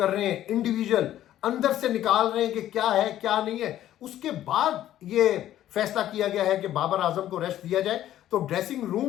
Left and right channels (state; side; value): quieter; right; 12.6 dB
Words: रहे हैं, इंडिविजुअल अंदर से निकाल रहे हैं कि क्या है क्या नहीं है। उसके बाद ये फैसला किया गया है कि बाबर आजम को रेस्ट दिया जाए। तो ड्रेसिंग